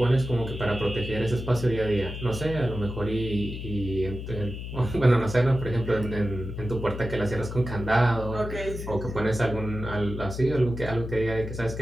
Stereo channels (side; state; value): left; noise; hum, 8 dB below the sound